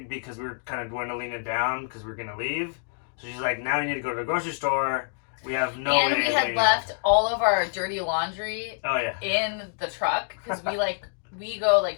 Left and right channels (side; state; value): right; silent; digital silence